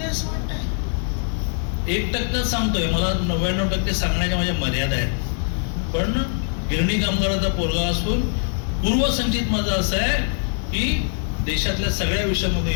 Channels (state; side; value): silent; right; 58 dB below the other